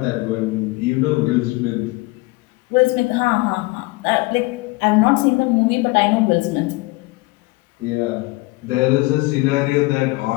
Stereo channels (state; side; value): quieter; right; 23.2 dB